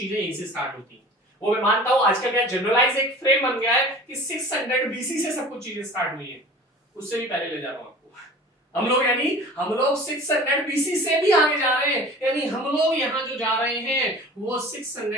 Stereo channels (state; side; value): normal; both; correlation 0.41